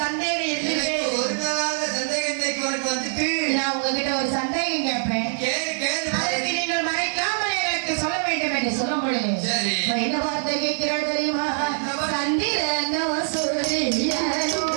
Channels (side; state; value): left; silent; digital silence